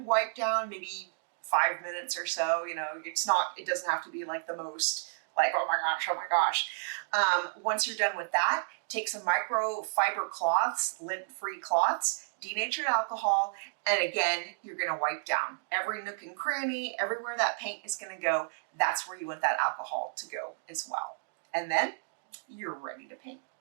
wipe down, maybe 5 minutes or so. It doesn't have to be like the most like, oh my gosh. Once you're done with that, take some microfiber cloths, lint-free cloths, denatured alcohol, and again, you're gonna wipe down every nook and cranny, everywhere that paint is gonna go. That's where you want that alcohol to go as well. And then you're ready to paint.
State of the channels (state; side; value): silent; left; digital silence